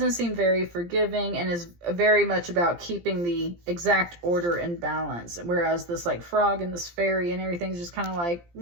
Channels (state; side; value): late; left; 17 ms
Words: seem very forgiving and is very much about keeping the exact order and balance, whereas this like frog and this fairy and everything's just kind of like